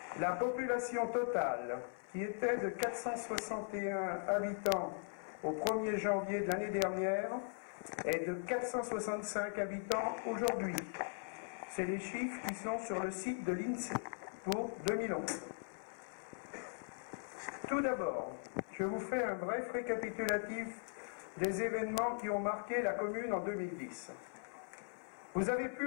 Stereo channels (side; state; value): right; silent; 51 dB below the other